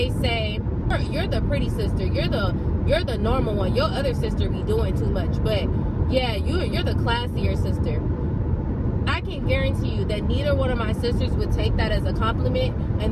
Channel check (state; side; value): identical; both; correlation 1.00